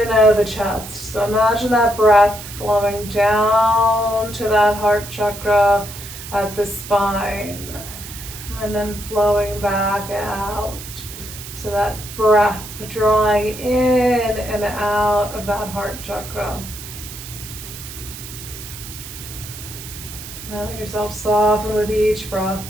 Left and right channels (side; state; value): right; noise; hiss, 12 dB below the sound